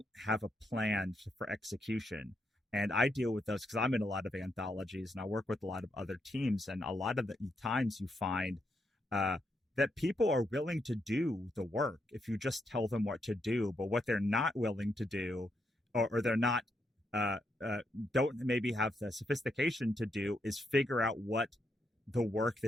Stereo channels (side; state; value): both; normal; correlation 0.80